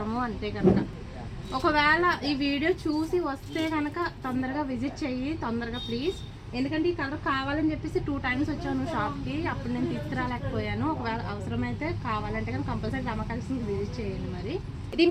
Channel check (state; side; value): identical; both; correlation 1.00